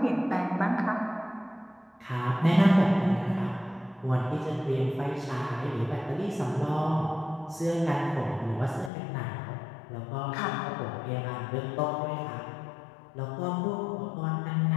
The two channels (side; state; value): right; drops out; at 8.9 s